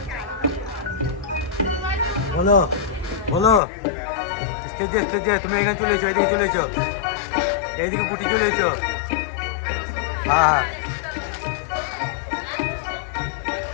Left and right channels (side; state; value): right; drops out; at 3.6 s